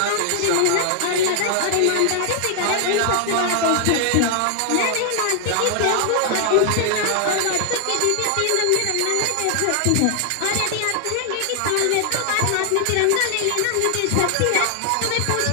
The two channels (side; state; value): both; different; correlation 0.00